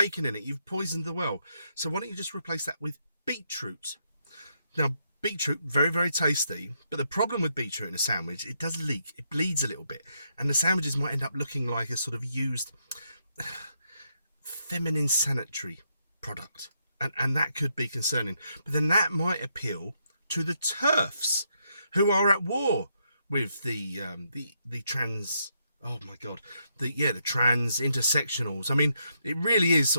in it. You've poisoned the well. So why don't you just replace that with beetroot? Now, beetroot, very, very tasty, but the problem with beetroot in a sandwich, it does leak. It bleeds a little bit, and the sandwiches might end up looking like a sort of used feminine sanitary product, and that could be concerning. But then that might appeal to the TERFs, who are at war with the trans... Oh my God, the trans intersectionals. I mean, it really is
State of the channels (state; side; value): inverted; both; correlation -0.78